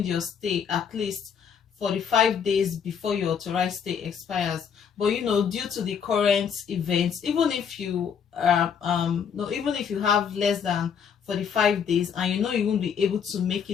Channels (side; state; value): right; quieter; 7.3 dB